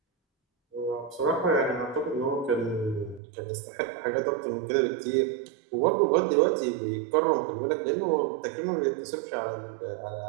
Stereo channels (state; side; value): drops out; left; at 3.2 s